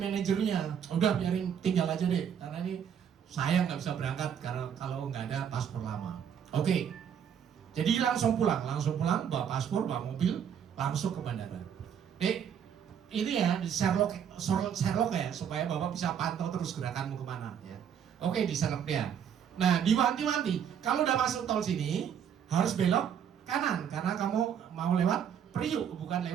manajernya. Udah biarin, tinggal aja deh, karena ini saya nggak bisa berangkat karena kalau nggak ada paspor lama. Oke, jadi langsung pulang, bawa paspor, bawa mobil, langsung ke bandara. Dek, ini ya di Sherlock ya, supaya Bapak bisa pantau terus gerakanmu kemana. Ya. Oke, di Sherlock dia. Nah, diwanti-wanti, kalau udah masuk tol sini, harus belok kanan, karena kamu mau lewat Priuk, bukan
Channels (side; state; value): left; quieter; 8.4 dB